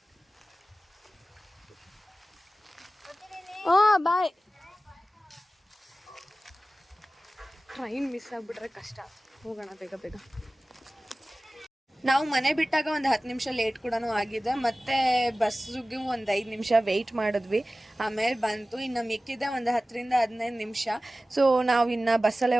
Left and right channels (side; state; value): both; normal; correlation 0.96